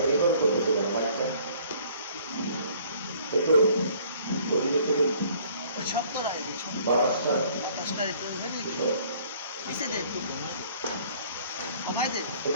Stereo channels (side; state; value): both; inverted; correlation -0.57